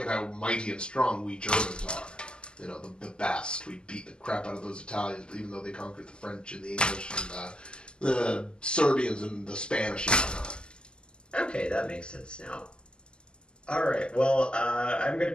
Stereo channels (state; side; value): late; right; 0.048 ms